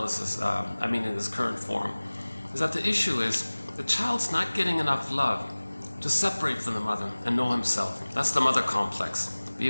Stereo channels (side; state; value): both; inverted; correlation -1.00